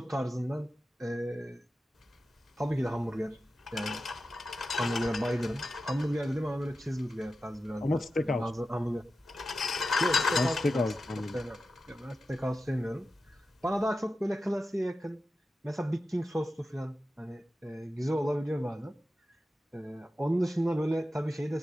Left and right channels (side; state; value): both; normal; correlation 0.92